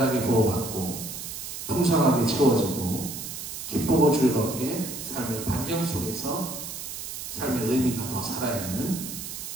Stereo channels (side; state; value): right; noise; hiss, 8 dB below the sound